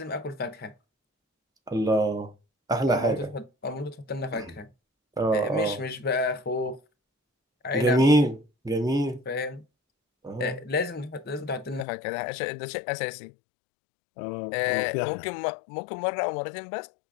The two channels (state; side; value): drops out; right; at 11.9 s